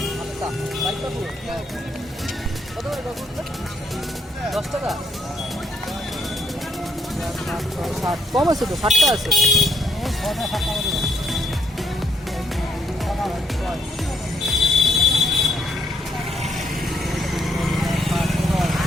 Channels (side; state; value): both; normal; correlation 0.73